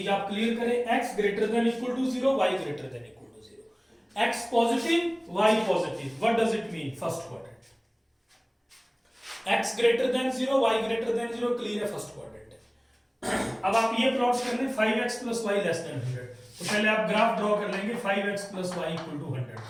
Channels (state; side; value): identical; both; correlation 1.00